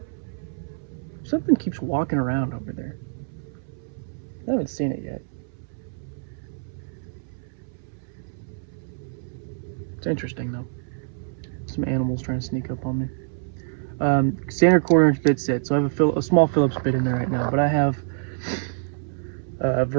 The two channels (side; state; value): left; silent; 61 dB below the other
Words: Something keeps walking around over there. I haven't seen it yet. It's interesting though. Some animals trying to sneak up on me. Standard 1/4-inch bit set. So I have a small Phillips bit in there right now, but I have a